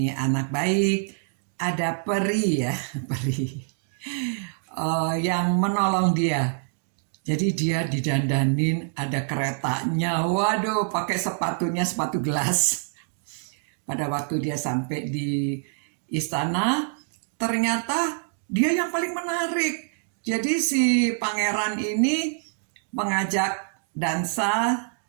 anak baik, ada peri ya, peri yang menolong dia. Jadi dia didandanin, ada keretanya, waduh pakai sepatunya, sepatu gelas. Pada waktu dia sampai di istana, ternyata dia yang paling menarik. Jadi si pangeran ini mengajak dansa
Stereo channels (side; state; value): left; silent; 61 dB below the other